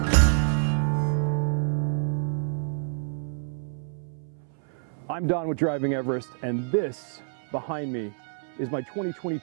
I'm Don with Driving Everest, and this behind me is my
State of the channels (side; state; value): left; silent; 60 dB below the other